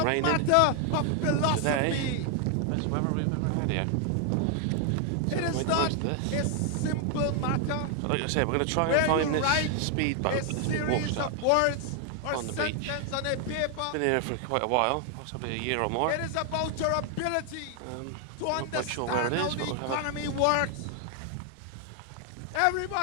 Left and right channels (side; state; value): both; different; correlation 0.00